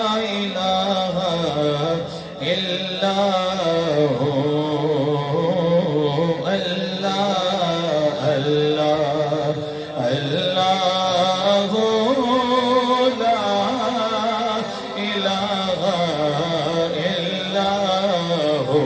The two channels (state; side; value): identical; both; correlation 1.00